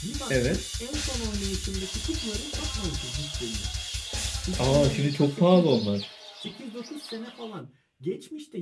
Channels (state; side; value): identical; both; correlation 1.00